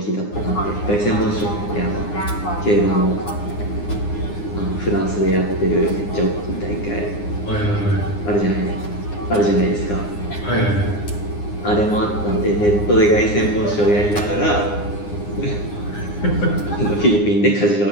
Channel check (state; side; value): late; right; 9.7 ms